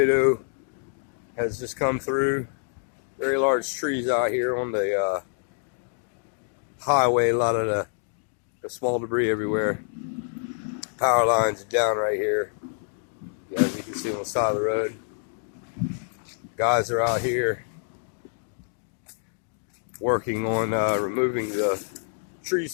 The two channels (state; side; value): silent; right; 60 dB below the other